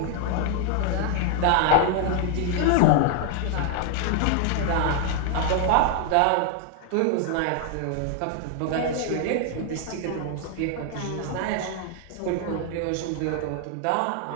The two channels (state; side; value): different; both; correlation 0.00